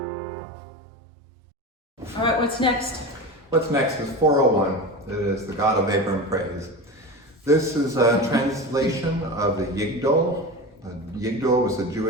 All right, what's next? What's next is 401. It is the God of Abram Praise. This is a translation of the Yigdal. The Yigdal was the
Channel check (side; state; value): both; normal; correlation 0.27